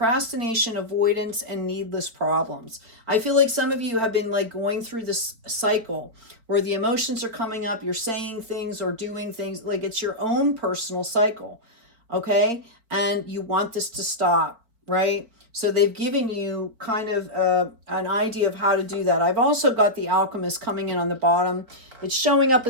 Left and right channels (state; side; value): late; left; 4.4 ms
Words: avoidance, and needless problems. I feel like some of you have been like going through this cycle where the emotions are coming up, you're saying things or doing things, like it's your own personal cycle, okay? And you want this to stop, right? So they've given you kind of an idea of how to do that. I've also got the alchemist coming in on the bottom. It's showing up